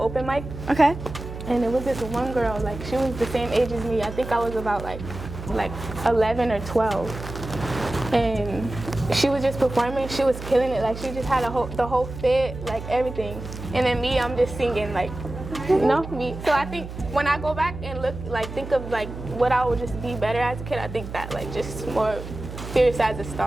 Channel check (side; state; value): right; noise; hum, 10 dB below the sound